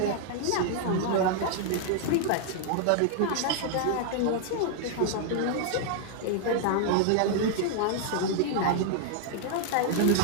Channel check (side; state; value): both; different; correlation -0.01